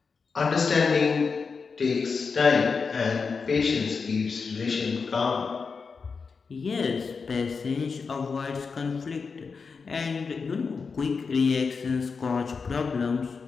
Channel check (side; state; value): right; quieter; 5.1 dB